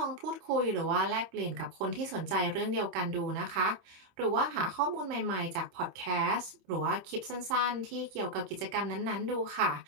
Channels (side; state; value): left; late; 26 ms